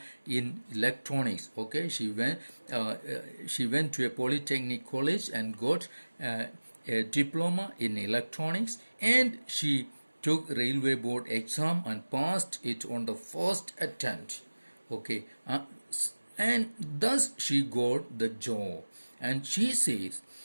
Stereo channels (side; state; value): both; inverted; correlation -1.00